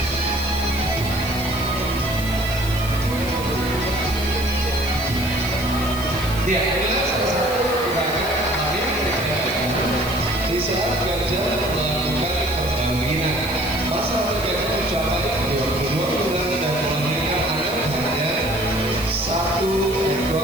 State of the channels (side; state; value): left; noise; hiss, 12 dB below the sound